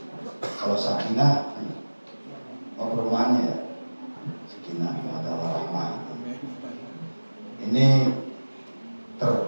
Kalau Sakinah perumahannya ya, Sakinah adalah rahmah. Ini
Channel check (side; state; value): both; inverted; correlation -1.00